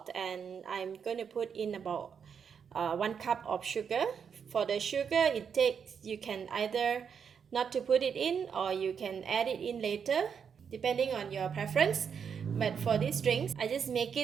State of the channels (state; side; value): quieter; left; 7.0 dB